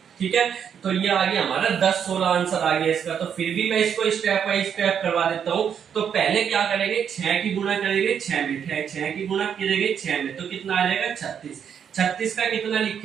ठीक है, तो ये आ गया हमारा 10-16 आंसर आ गया इसका। तो फिर भी मैं इसको स्टेप बाय स्टेप करवा देता हूं। तो पहले क्या करेंगे, 6 की गुणा करेंगे 6 में, 6 की गुणा करेंगे 6 में, तो कितना आ जाएगा 36। 36 का कितना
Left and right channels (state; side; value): quieter; left; 8.0 dB